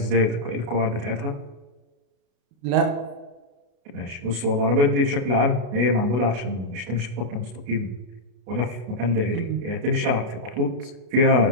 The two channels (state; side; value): late; left; 33 ms